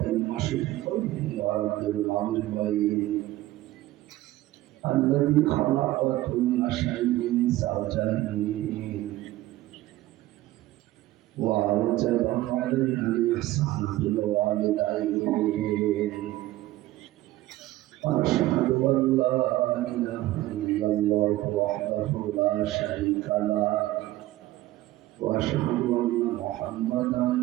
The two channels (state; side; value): quieter; left; 16.3 dB